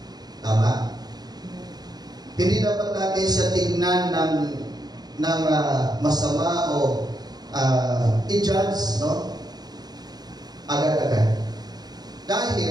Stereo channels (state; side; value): late; left; 0.19 ms